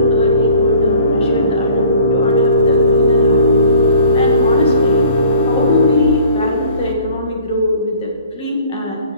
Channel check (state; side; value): inverted; both; correlation -0.50